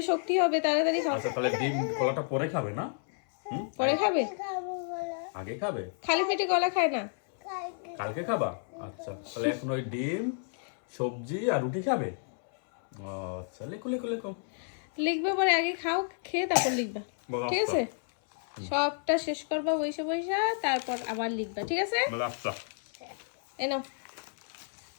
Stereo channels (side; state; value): right; silent; 57 dB below the other